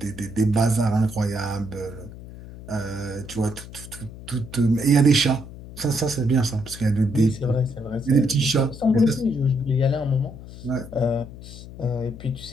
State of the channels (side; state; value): left; noise; hum, 14 dB below the sound